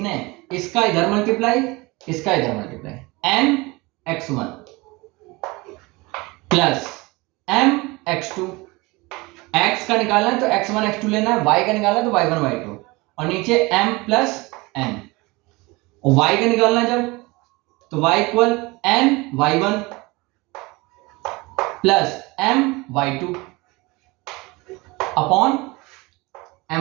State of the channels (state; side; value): quieter; left; 23.8 dB